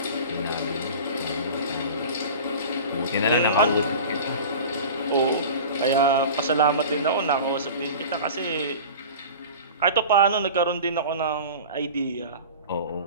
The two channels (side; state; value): both; inverted; correlation -0.36